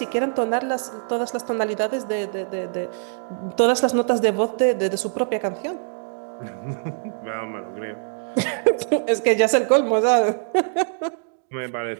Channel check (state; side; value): silent; left; digital silence